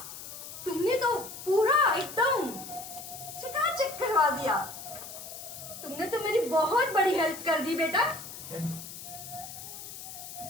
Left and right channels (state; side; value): noise; left; hiss, 11 dB below the sound